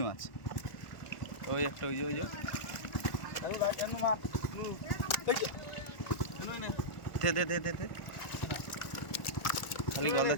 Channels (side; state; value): right; late; 1.4 ms